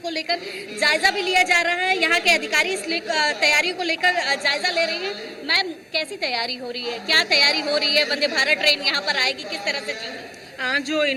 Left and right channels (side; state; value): both; identical; correlation 1.00